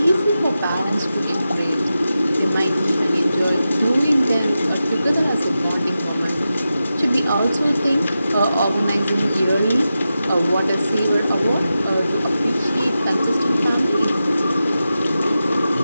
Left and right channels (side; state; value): both; inverted; correlation -0.91